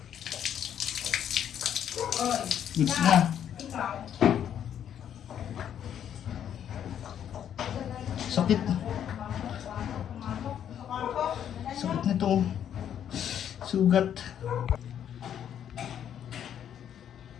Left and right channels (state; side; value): quieter; right; 9.5 dB